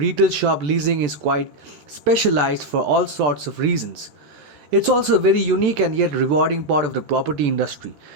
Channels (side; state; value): left; late; 14 ms